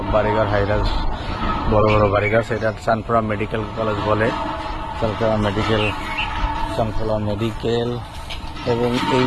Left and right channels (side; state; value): both; identical; correlation 1.00